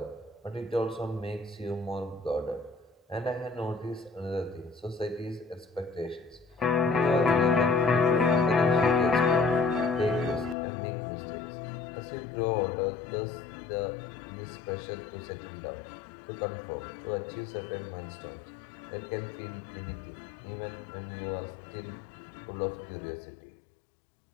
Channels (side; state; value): right; drops out; at 10.6 s